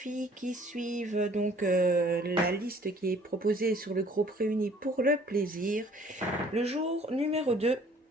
qui suivent donc la liste qui est proposée sur le groupe Réunis pour le plaisir, le jour numéro 2,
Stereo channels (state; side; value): normal; both; correlation 0.56